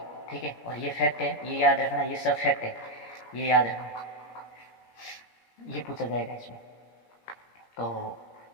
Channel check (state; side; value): late; right; 17 ms